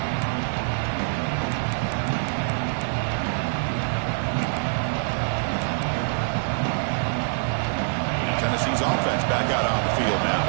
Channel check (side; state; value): left; silent; digital silence